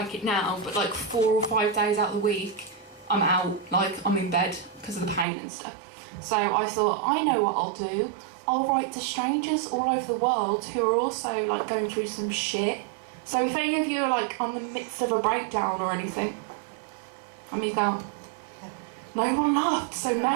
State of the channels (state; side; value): drops out; left; at 5.2 s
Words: it now, but like 4 or 5 days out of the week, I'm out, like I'm in bed because of the pain and stuff. So I thought, I know what I'll do. I'll write to strangers all over the world who are also like going through some shit. So if any of you are like on the midst of a breakdown or anything, and me go, no one laughed, so